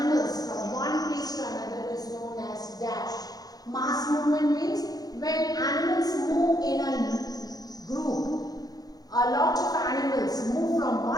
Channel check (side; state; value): right; late; 0.19 ms